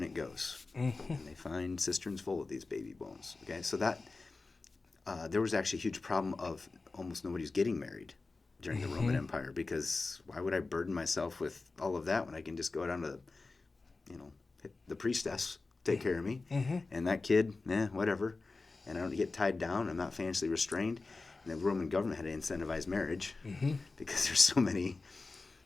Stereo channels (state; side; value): quieter; right; 3.7 dB